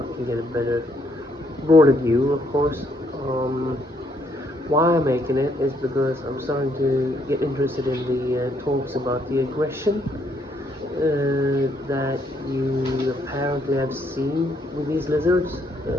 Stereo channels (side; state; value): both; normal; correlation 0.71